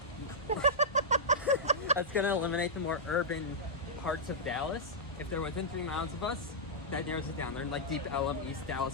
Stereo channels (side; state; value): both; normal; correlation -0.10